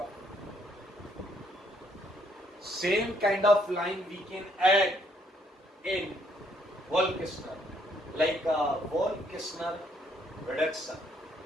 हूं। Same kind of line we can add in Wolff-Kishner, like Wolff-Kishner reduction,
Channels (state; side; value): normal; both; correlation 0.69